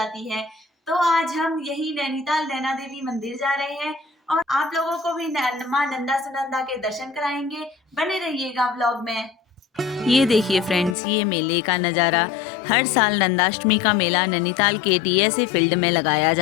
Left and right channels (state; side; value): drops out; right; at 11.0 s